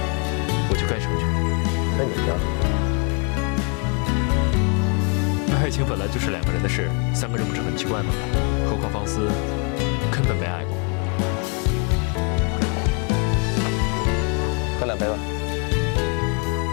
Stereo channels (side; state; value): right; quieter; 36.7 dB